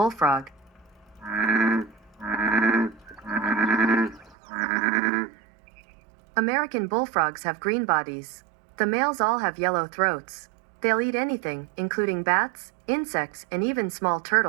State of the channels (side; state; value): left; drops out; at 4.4 s